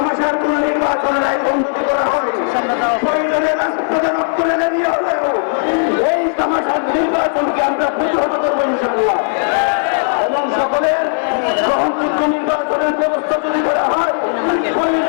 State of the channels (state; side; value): silent; right; digital silence